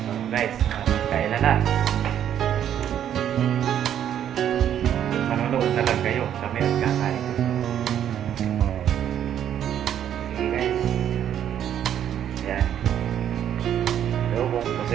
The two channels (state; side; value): quieter; left; 10.1 dB